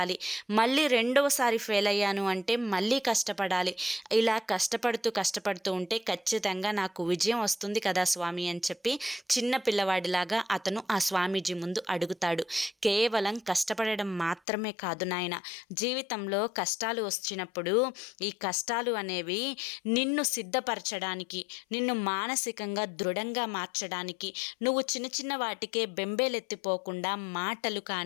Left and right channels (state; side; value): drops out; right; at 14.4 s